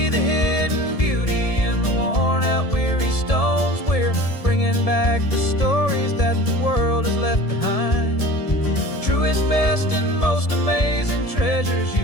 the hidden beauty in the worn out weary stones. We're bringing back the stories that the world has left behind, the truest, best, and most amazing treasures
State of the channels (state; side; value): late; right; 1.7 ms